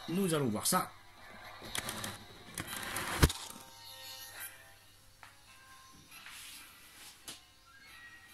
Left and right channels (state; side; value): identical; both; correlation 1.00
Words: nous allons voir ça.